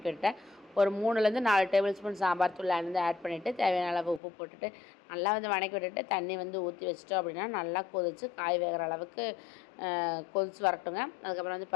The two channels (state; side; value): drops out; right; at 4.2 s